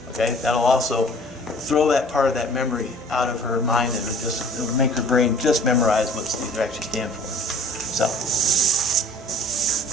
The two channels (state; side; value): noise; right; hum, 24 dB below the sound